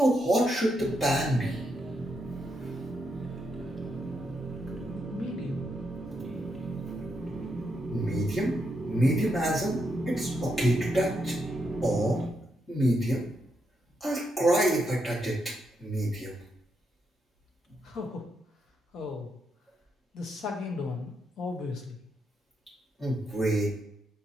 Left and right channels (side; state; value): both; normal; correlation 0.81